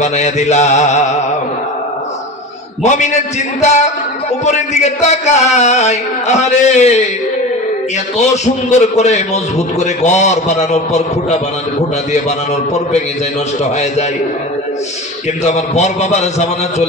বানায়া দিলাম। মুমিনের চিন্তা উপরের দিকে তাকায়, আরে এত সুন্দর করে মজবুত করে ঘর বানানোর পর, খুঁটা দিয়ে বানানোর পর ভেঙে যায়, নষ্ট হয়ে যায়। কিন্তু আমার বর বাবার জামানা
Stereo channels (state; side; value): normal; both; correlation 0.31